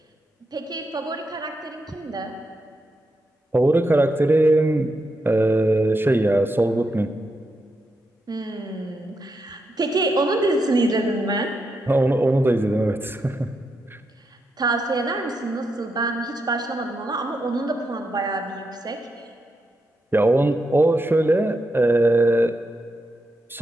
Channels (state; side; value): normal; both; correlation 0.84